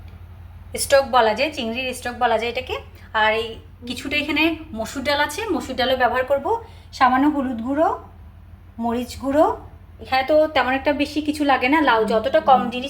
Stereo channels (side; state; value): both; identical; correlation 1.00